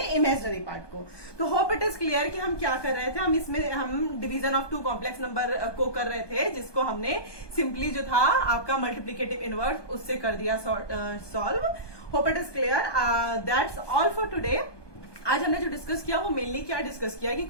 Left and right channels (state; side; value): late; right; 1.2 ms